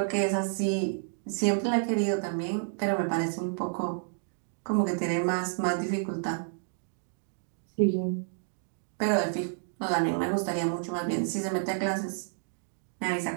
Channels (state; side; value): silent; left; digital silence